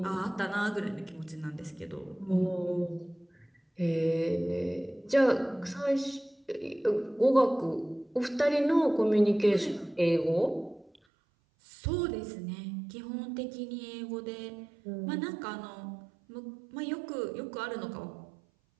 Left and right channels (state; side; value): drops out; left; at 11.0 s